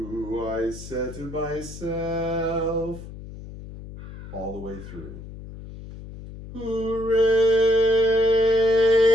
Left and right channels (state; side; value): noise; left; hum, 13 dB below the sound